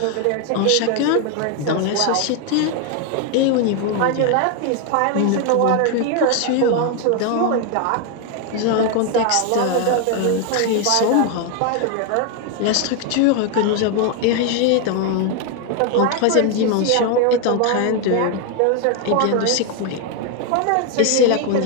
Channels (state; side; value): different; both; correlation 0.01